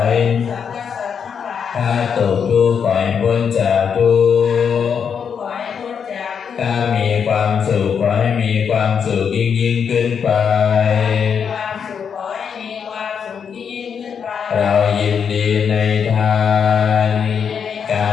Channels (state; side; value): quieter; right; 7.0 dB